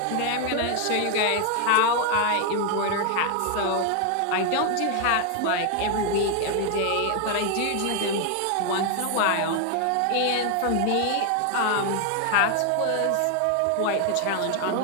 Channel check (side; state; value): both; different; correlation 0.00